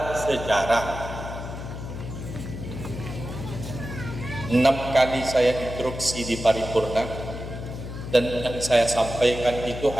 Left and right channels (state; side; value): noise; left; hum, 8 dB below the sound